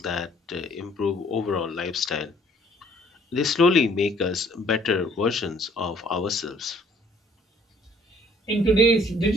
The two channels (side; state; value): both; normal; correlation 0.59